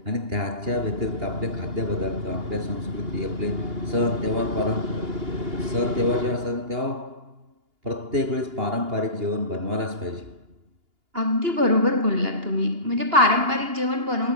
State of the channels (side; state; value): left; late; 2.8 ms